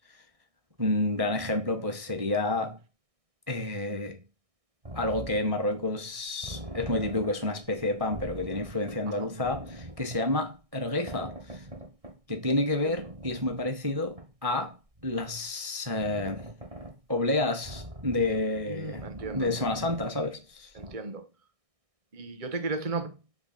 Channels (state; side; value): late; left; 1.6 ms